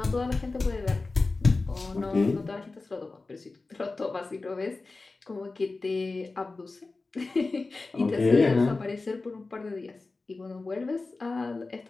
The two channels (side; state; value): right; quieter; 3.6 dB